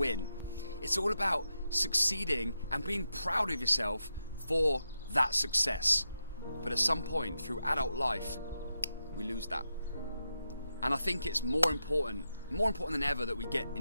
It's all about succeeding and being proud of yourself for that success. But at some point through adult life, we lose that. And I think it's more important than ever that we get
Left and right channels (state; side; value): inverted; both; correlation -0.87